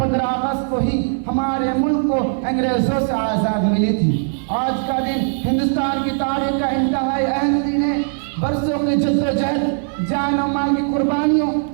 اگست کو ہی ہمارے ملک کو انگریزوں سے آزاد ملی تھی. آج کا دن ہندوستان کی تاریخ کا انتہائی اہم دن ہے. برسوں کی جدوجہد، جان و مال کی قربانیوں،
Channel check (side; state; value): left; silent; 63 dB below the other